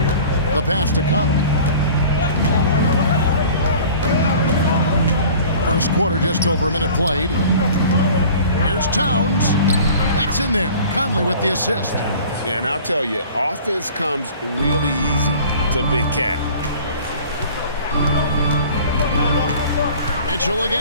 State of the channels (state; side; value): inverted; both; correlation -0.45